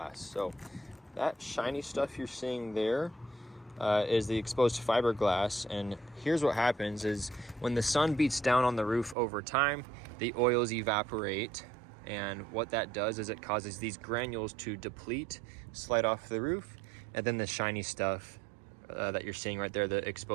So that shiny stuff you're seeing there is the exposed fiberglass, and here's what happens is when the sun beats down on the roof over time, the oils evaporate, and what that does is it causes these granules to deplete, slide off the roof, and then the shiny stuff that you're seeing right there, the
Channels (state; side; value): drops out; left; at 9.2 s